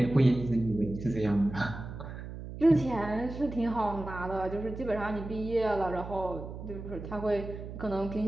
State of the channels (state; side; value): noise; right; hum, 10 dB below the sound